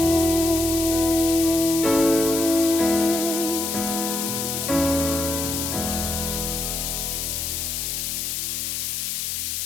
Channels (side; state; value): left; noise; hiss, 2 dB below the sound